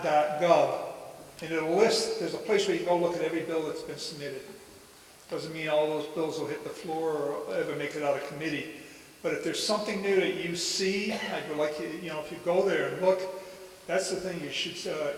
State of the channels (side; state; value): both; identical; correlation 1.00